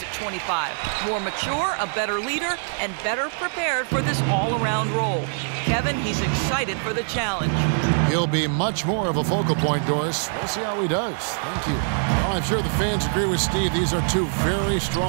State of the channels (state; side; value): silent; left; digital silence